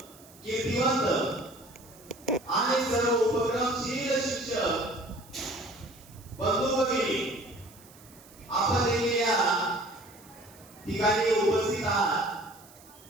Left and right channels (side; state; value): right; noise; hiss, 23 dB below the sound